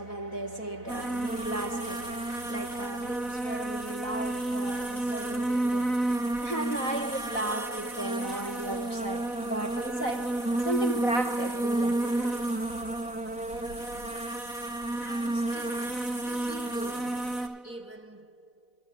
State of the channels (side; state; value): right; late; 4.0 ms